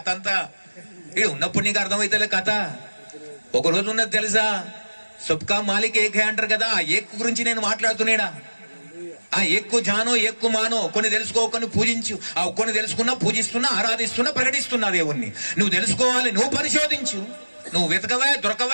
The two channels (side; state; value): both; inverted; correlation -1.00